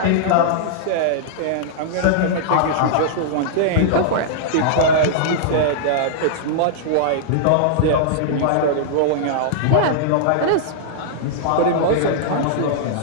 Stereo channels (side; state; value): both; different; correlation -0.02